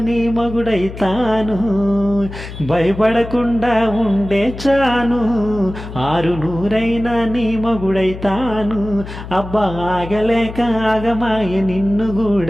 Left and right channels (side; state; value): left; noise; hum, 11 dB below the sound